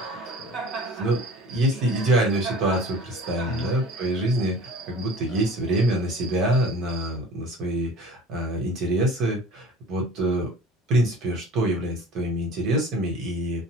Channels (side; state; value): both; normal; correlation 0.43